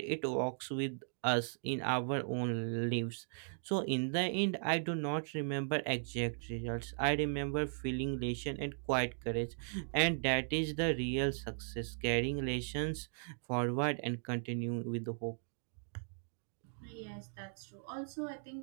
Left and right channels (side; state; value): left; silent; digital silence